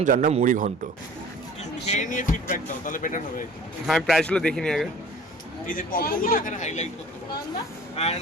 যার নাম মুড়ি ঘন্ট। খেয়ে নিয়ে ফিডব্যাক দাও, তাহলে বেটার হবে। হ্যাঁ, আমি প্রাইসগুলো দেখিনি আগে। এই যে কম্বোগুলো এখানে হাইলাইট করতে পারো। And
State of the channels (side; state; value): both; normal; correlation 0.46